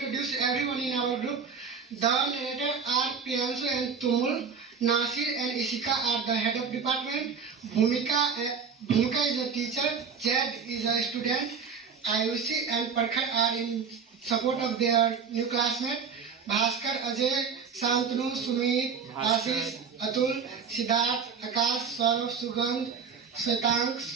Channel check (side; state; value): left; quieter; 6.1 dB